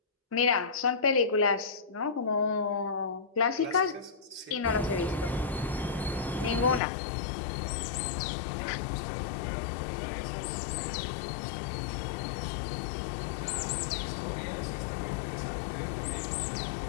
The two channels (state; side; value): drops out; right; at 6.8 s